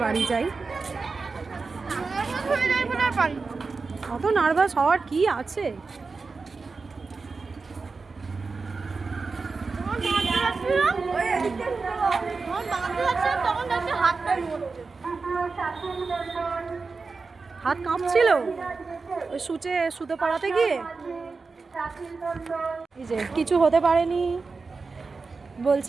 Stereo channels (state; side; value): quieter; left; 4.3 dB